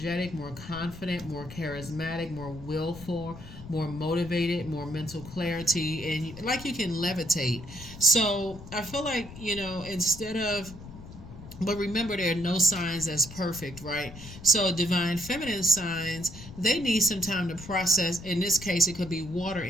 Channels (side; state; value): left; noise; rumble, 15 dB below the sound